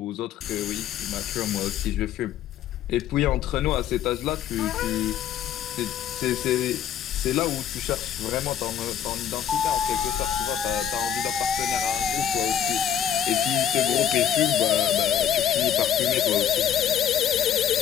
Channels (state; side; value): quieter; right; 9.3 dB